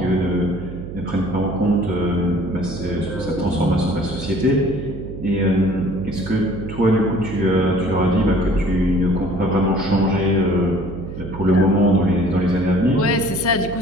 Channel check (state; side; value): noise; right; hum, 10 dB below the sound